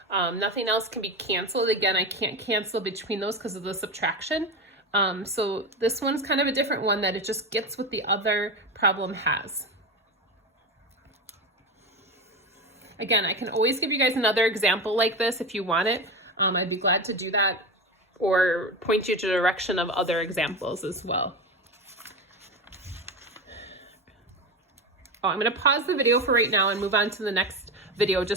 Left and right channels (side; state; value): both; normal; correlation 0.21